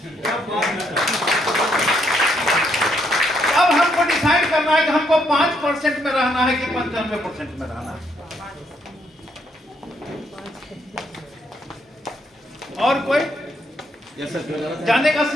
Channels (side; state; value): both; normal; correlation 0.74